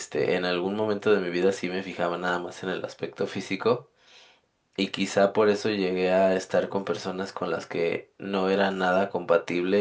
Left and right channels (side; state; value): both; identical; correlation 1.00